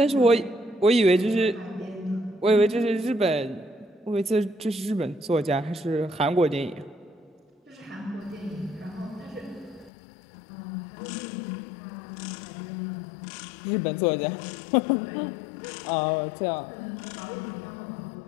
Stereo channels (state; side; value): drops out; right; at 9.9 s